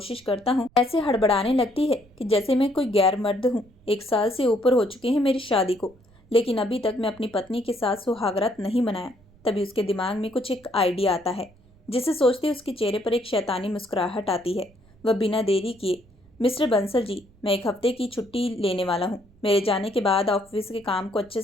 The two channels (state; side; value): noise; right; rumble, 29 dB below the sound